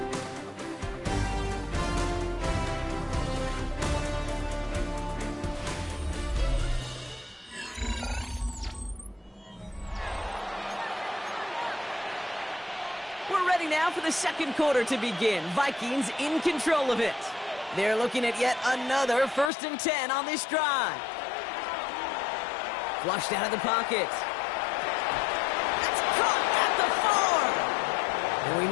We're ready now for the 2nd quarter to begin. Vikings in control of it. They're looking at yet another 1st and 10 on this drive. Flushed out of the pocket. That's caught at the 4. And we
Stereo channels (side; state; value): right; drops out; at 19.5 s